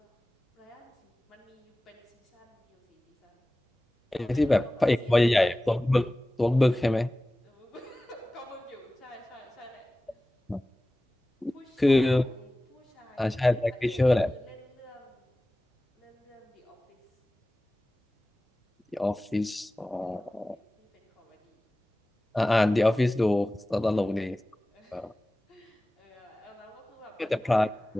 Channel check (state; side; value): normal; both; correlation 0.97